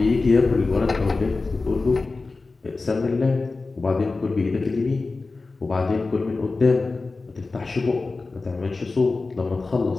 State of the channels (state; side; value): quieter; right; 3.7 dB